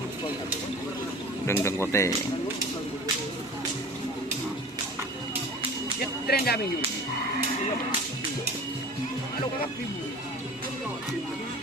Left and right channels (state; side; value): normal; both; correlation 0.40